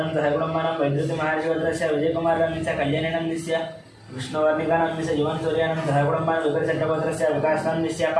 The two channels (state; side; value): identical; both; correlation 1.00